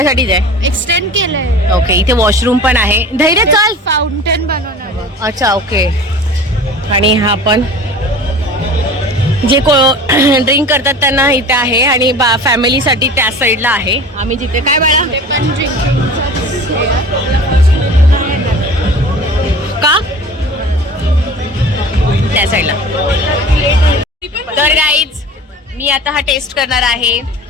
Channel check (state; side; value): normal; both; correlation 0.39